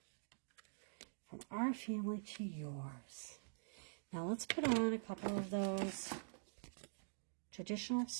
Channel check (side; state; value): left; silent; digital silence